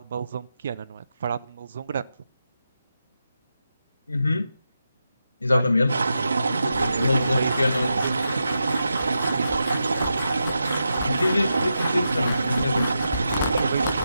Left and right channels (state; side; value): inverted; both; correlation -0.87